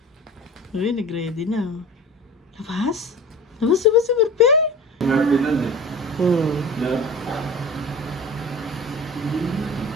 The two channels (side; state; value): both; normal; correlation 0.36